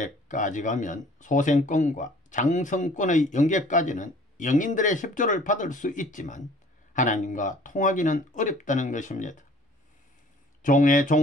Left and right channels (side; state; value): both; normal; correlation 0.53